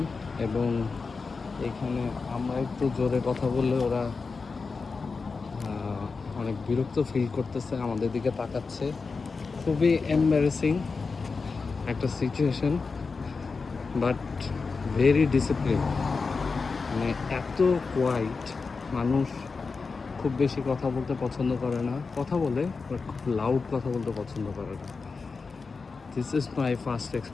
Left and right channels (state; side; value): quieter; right; 4.6 dB